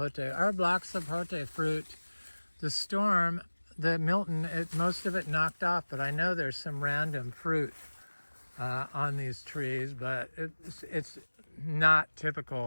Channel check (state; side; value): inverted; both; correlation -1.00